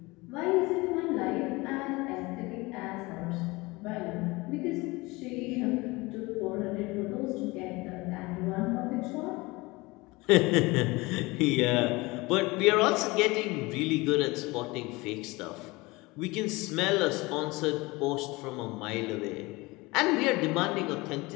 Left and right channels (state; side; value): quieter; right; 23.0 dB